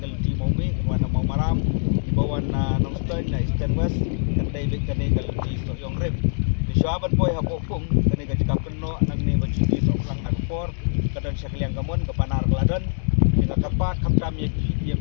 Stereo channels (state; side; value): silent; right; digital silence